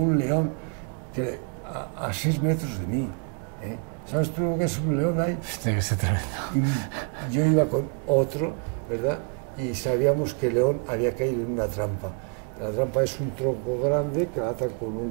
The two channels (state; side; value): quieter; left; 38.5 dB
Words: león que a 6 metros de mí, ¿eh? ¿Sabes tú lo que es un león ahí? Tiene que ser tremendo. Y yo iba con otro, ¿verdad? Y sabíamos que el león había caído en una trampa. La trampa es un tronco grande que atan con